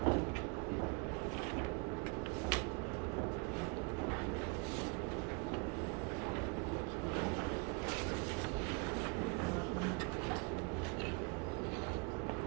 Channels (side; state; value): left; quieter; 32.2 dB